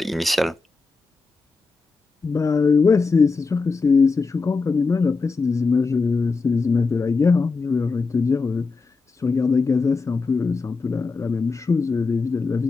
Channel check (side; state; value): right; quieter; 4.3 dB